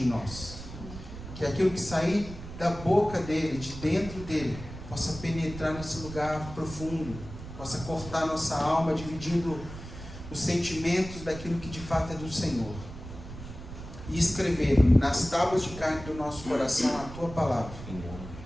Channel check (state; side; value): noise; right; rumble, 12 dB below the sound